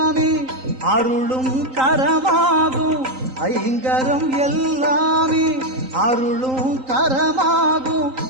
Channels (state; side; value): late; left; 3.8 ms